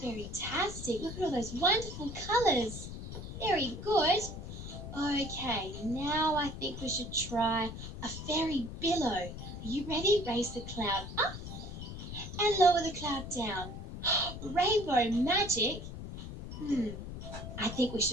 very-tastic. Look at all those wonderful colours. Very good. Okay, now I think we should try a fairy billow. Are you ready? Raise the cloud up and lower the cloud down. Rainbow magic. I think we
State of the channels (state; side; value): noise; left; rumble, 9 dB below the sound